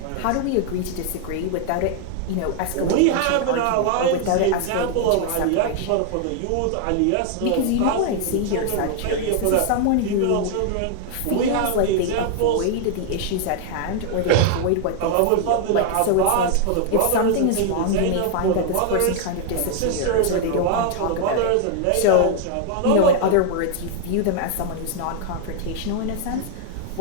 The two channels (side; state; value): both; different; correlation 0.00